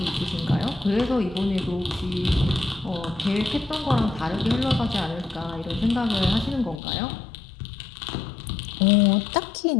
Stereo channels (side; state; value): right; drops out; at 6.8 s